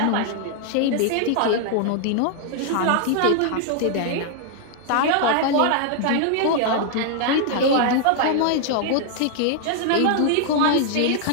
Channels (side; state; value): both; different; correlation 0.00